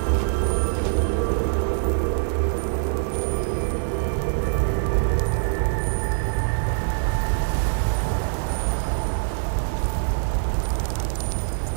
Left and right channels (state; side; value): silent; left; digital silence